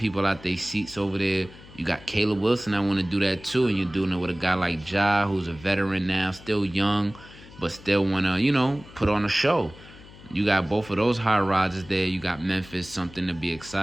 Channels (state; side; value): noise; left; hum, 20 dB below the sound